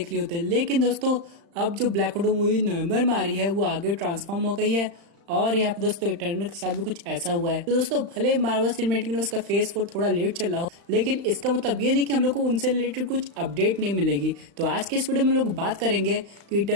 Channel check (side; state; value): left; late; 35 ms